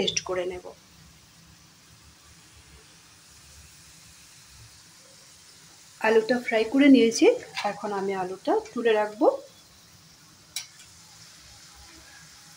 করে নেব। আলুটা ফ্রাই করে নিয়েছি, এখন আমি আলুটা তুলে রাখবো।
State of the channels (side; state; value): both; identical; correlation 1.00